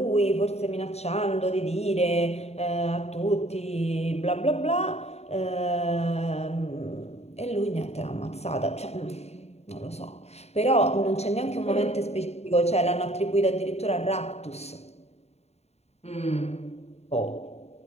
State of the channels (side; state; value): right; late; 0.31 ms